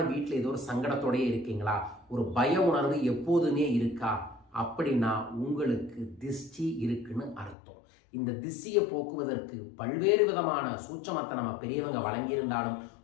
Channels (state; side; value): drops out; right; at 7.6 s